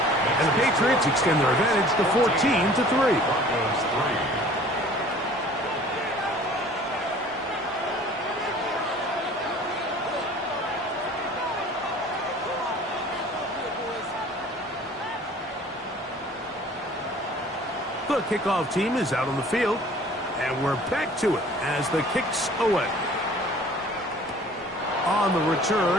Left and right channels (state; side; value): normal; both; correlation 0.49